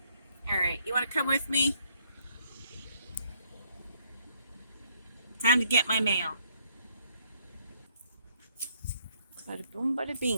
All right, you want to come with me? Time to get my mail. Bada boom, bada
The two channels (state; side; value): inverted; both; correlation -0.68